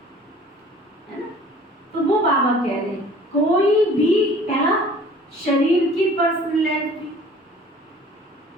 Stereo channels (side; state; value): both; normal; correlation 0.49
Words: ना। तो वो बाबा कह रहे हैं, कोई भी पहला शरीर की पर्सनैलिटी,